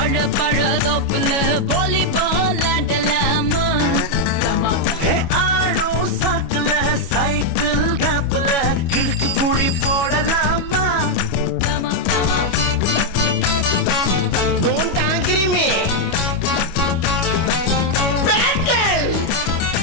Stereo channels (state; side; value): late; right; 25 ms